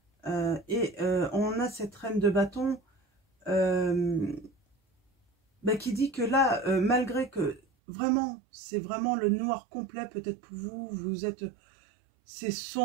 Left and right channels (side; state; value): left; drops out; at 7.6 s